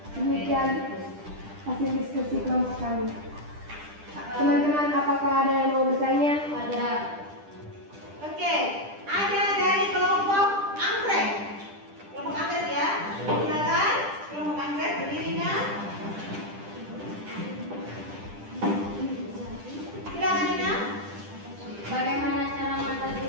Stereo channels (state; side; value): late; left; 10 ms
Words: Demikian hasil diskusi kelompok kami. Teman-teman, apakah ada yang mau bertanya? Ada. Oke, ada dari kelompok anggrek. Kelompok anggrek ya. Silakan kelompok anggrek berdirinya. Silakan Nina. Bagaimana cara